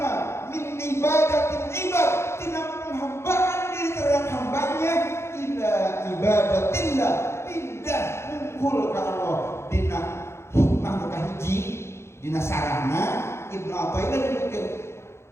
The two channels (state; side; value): late; right; 0.13 ms